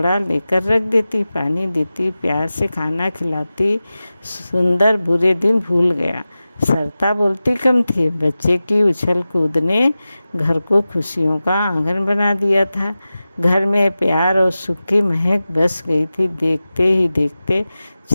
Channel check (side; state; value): both; inverted; correlation -0.95